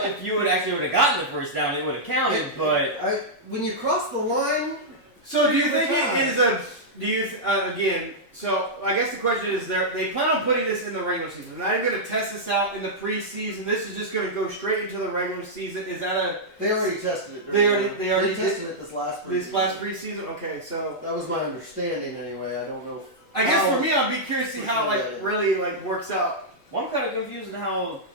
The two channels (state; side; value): late; right; 2.0 ms